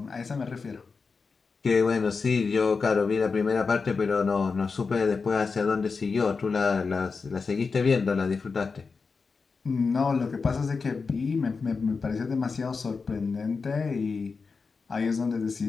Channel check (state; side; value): quieter; right; 4.8 dB